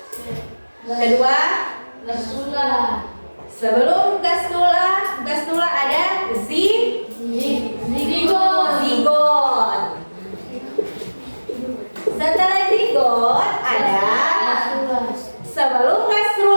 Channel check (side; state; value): both; inverted; correlation -1.00